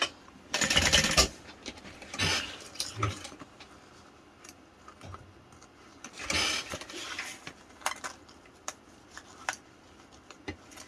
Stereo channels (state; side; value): identical; both; correlation 1.00